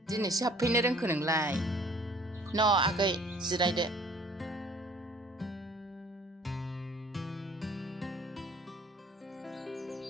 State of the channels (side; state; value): both; normal; correlation 0.54